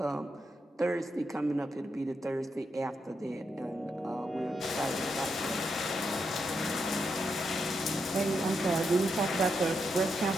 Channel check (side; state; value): both; normal; correlation 0.83